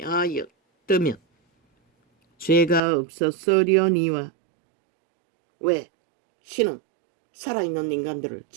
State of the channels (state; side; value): drops out; left; at 2.8 s